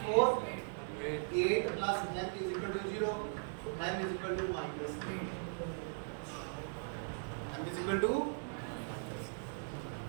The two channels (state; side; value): silent; left; 52 dB below the other